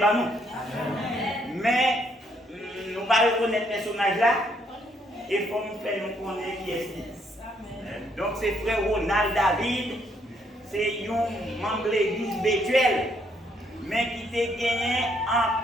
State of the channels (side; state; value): both; normal; correlation 0.71